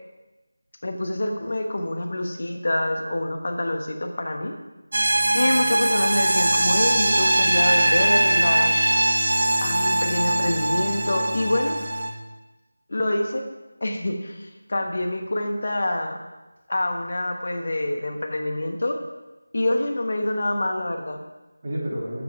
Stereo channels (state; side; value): inverted; both; correlation -0.97